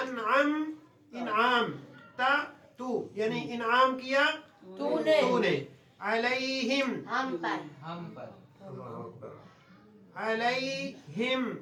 इनाम ता तू यानी इनाम किया तूने, तूने। अलैहिम, हम पर, अलैहिम,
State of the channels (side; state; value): both; identical; correlation 1.00